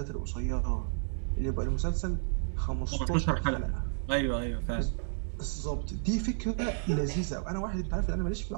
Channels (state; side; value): silent; left; 57 dB below the other